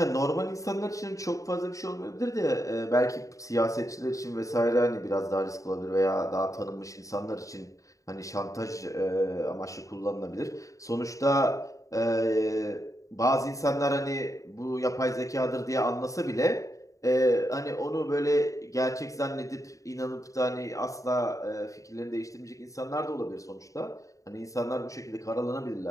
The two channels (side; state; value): right; late; 0.16 ms